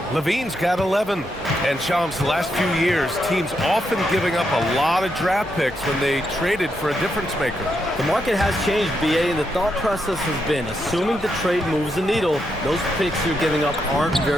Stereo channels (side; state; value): both; normal; correlation 0.81